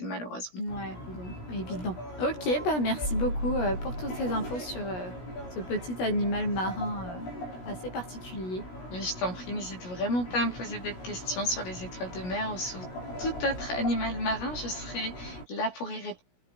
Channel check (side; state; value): right; late; 17 ms